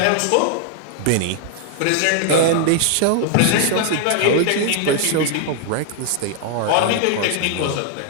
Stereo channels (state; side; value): different; both; correlation 0.00